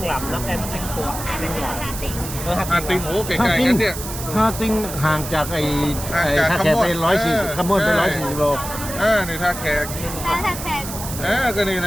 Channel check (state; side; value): noise; right; hiss, 9 dB below the sound